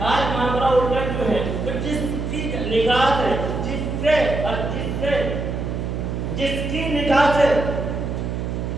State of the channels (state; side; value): noise; right; hum, 3 dB below the sound